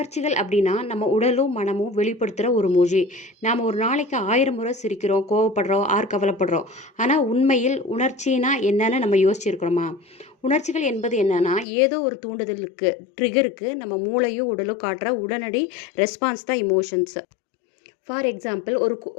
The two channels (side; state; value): right; drops out; at 11.7 s